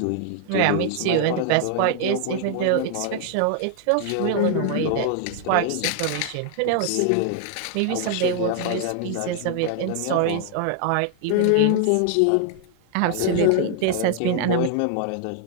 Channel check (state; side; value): different; both; correlation 0.00